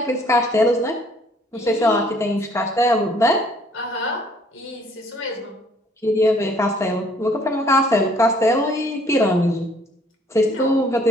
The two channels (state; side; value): normal; both; correlation 0.61